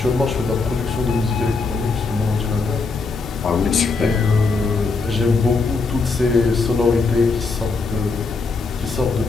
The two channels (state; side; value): quieter; right; 4.1 dB